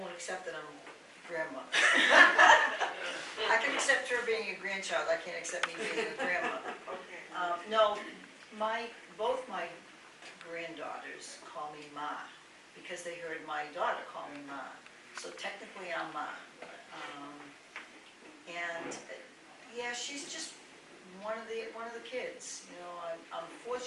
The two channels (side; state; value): both; identical; correlation 1.00